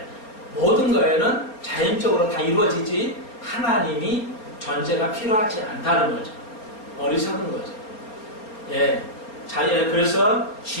모든 거에는 자연적으로 다 이루어지지 하나님이 존재가 필요하지 않다는 거죠. 어리석은 거죠. 예, 그래서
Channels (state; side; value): late; right; 4.4 ms